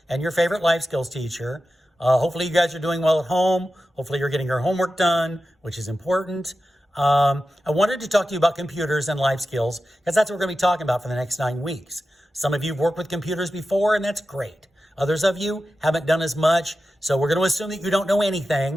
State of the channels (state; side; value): normal; both; correlation 0.92